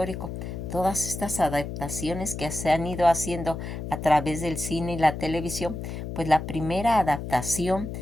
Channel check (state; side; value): noise; left; hum, 7 dB below the sound